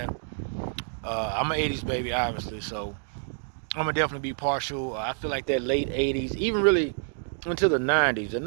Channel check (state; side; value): silent; left; digital silence